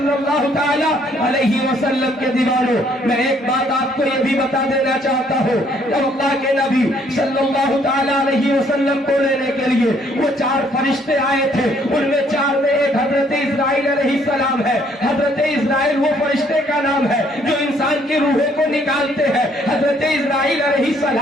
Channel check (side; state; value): both; normal; correlation 0.65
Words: اللہ تعالی علیہ وسلم کے دیوانوں، میں ایک بات آپ کو یہ بھی بتا دینا چاہتا ہوں، جب اللہ کے نبی صلی اللہ تعالی علیہ وسلم کو لینے کے لیے وہ 4 فرشتے آئے تھے، ان میں 4 میں ایک حضرت اسرائیل علیہ السلام ہے۔ حضرت اسرائیل وہ فرشتے کا نام ہے جو انسان کی روحوں کو نکالتے ہیں۔ حضرت اسرائیل علیہ